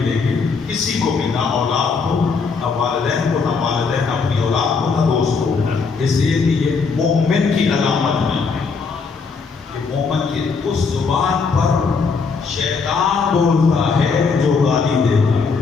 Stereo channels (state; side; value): quieter; right; 4.9 dB